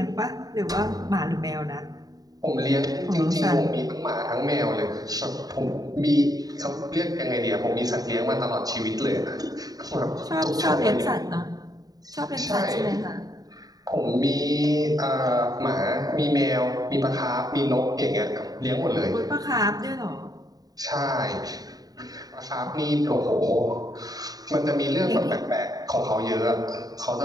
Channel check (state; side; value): late; left; 0.18 ms